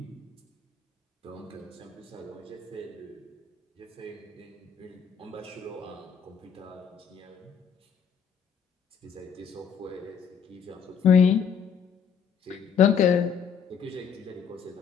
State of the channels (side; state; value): right; quieter; 6.9 dB